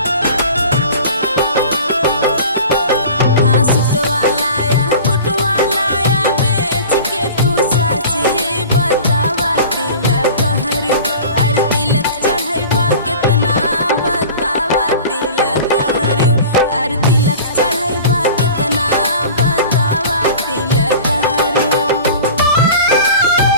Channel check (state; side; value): inverted; both; correlation -0.39